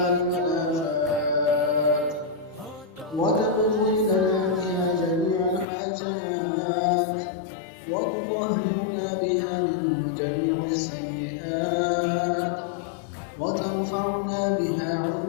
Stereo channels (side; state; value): right; drops out; at 5.7 s